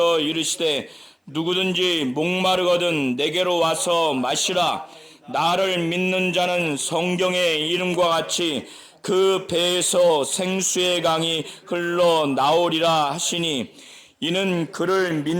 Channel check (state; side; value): identical; both; correlation 1.00